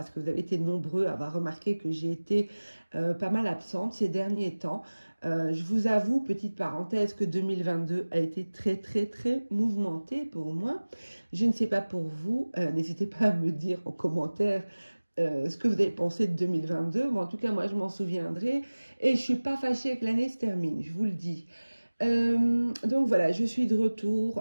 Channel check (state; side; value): inverted; both; correlation -1.00